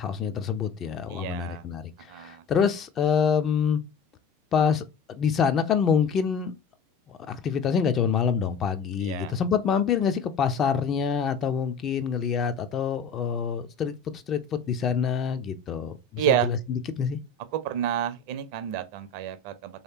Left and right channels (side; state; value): right; quieter; 4.5 dB